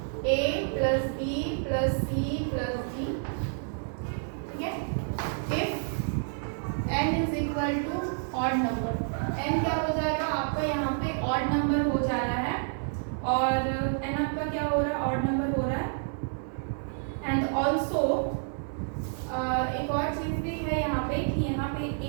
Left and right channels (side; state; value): left; silent; 58 dB below the other